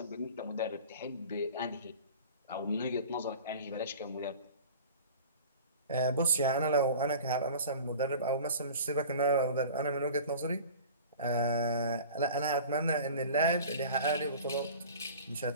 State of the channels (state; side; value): inverted; both; correlation -0.40